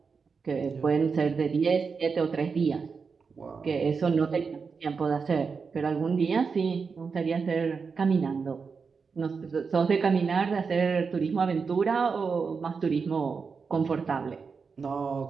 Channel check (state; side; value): quieter; left; 5.3 dB